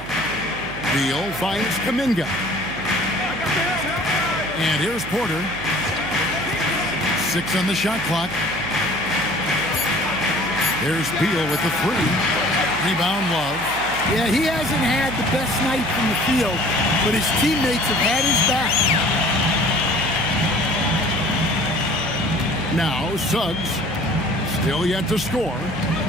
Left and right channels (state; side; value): noise; right; hum, 14 dB below the sound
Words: Beal finds Kuminga. And here's Porter. 6 on the shot clock. There's Beal with the 3. Rebound Love. Yeah, he hasn't had the best night from the field, but his teammates have had his back. Now Suggs, still yet to score.